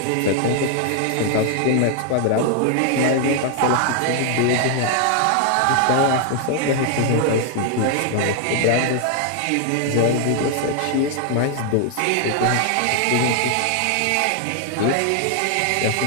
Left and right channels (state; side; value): different; both; correlation 0.00